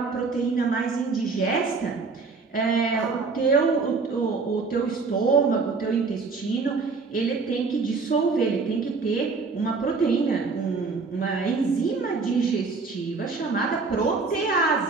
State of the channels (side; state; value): left; quieter; 4.4 dB